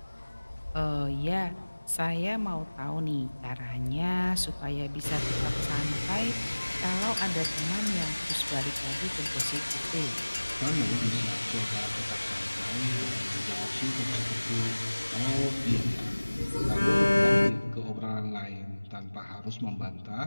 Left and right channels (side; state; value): both; inverted; correlation -1.00